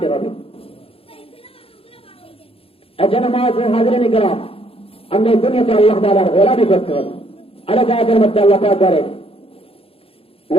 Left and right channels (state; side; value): late; right; 0.27 ms